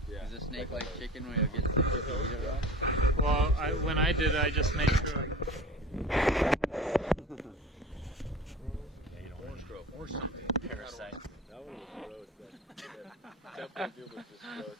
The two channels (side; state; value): both; normal; correlation 0.37